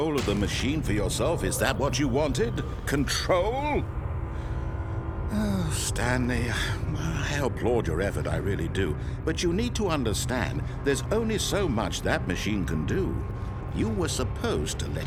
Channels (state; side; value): identical; both; correlation 1.00